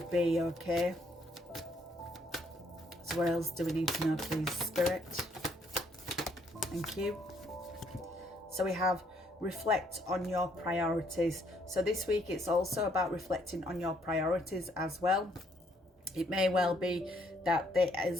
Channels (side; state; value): both; normal; correlation 0.68